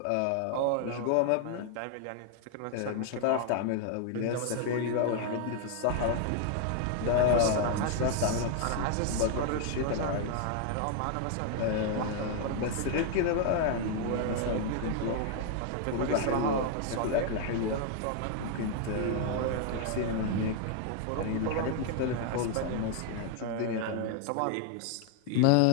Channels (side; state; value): both; different; correlation 0.00